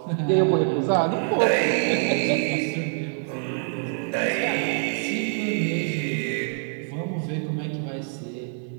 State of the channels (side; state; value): left; silent; 61 dB below the other